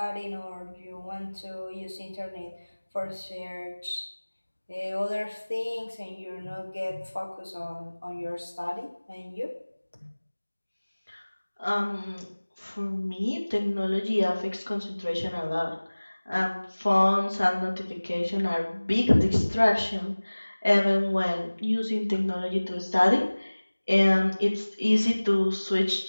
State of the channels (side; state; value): both; inverted; correlation -1.00